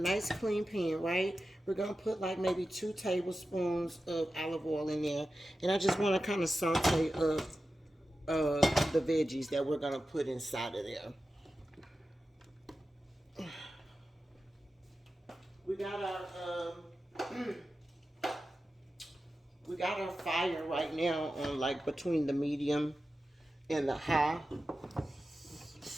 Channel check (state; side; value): normal; both; correlation 0.93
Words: clean pan, right? We're gonna put like maybe 2 tablespoons of olive oil in there. And I just wanna kind of saute up the veggies that we're gonna put inside of there. We got our fire right now on like between the medium and the high.